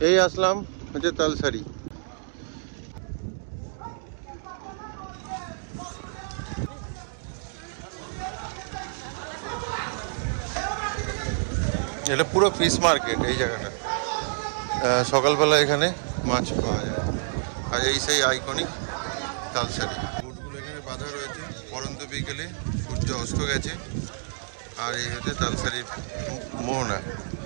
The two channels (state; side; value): silent; left; digital silence